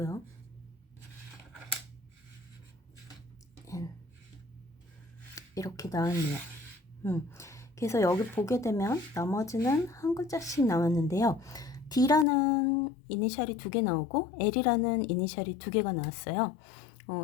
N, 이렇게 나왔네요. 그래서 여기 보게 되면 나머지는 한 글자씩 나왔는데요. D라는 이니셜이 두 개 나오고 L이라는 이니셜이 두 개가 나왔어요.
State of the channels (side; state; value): right; drops out; at 12.2 s